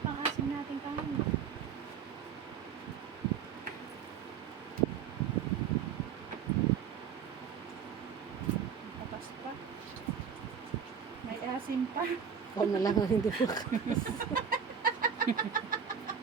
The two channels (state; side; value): quieter; left; 7.2 dB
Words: pang-asim natin kain? Patas pa. May asim pa. Ikaw na lang ang hindi makas.